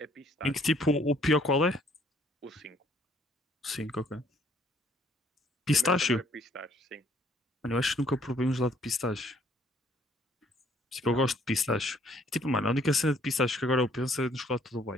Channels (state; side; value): normal; both; correlation 0.63